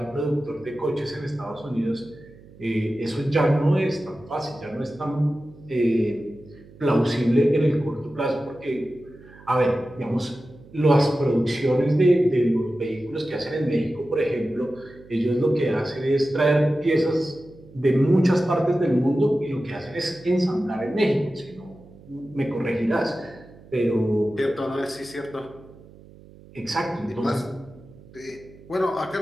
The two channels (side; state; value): right; noise; hum, 22 dB below the sound